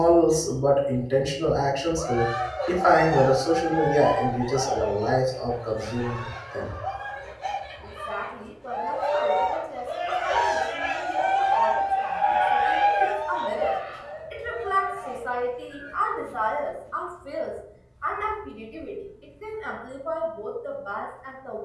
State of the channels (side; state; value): both; identical; correlation 1.00